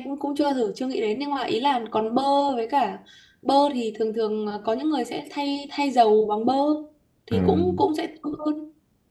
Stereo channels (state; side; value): identical; both; correlation 1.00